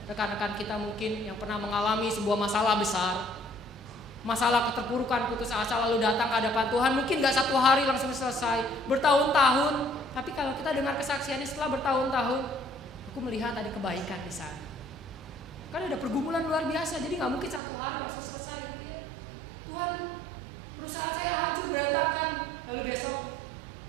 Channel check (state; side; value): drops out; left; at 17.6 s